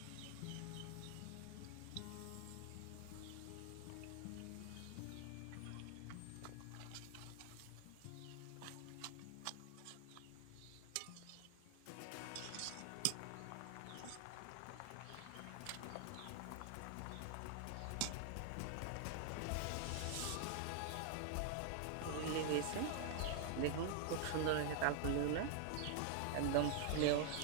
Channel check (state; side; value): different; both; correlation 0.00